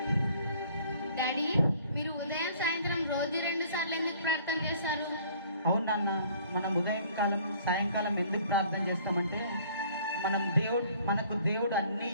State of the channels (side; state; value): both; inverted; correlation -0.56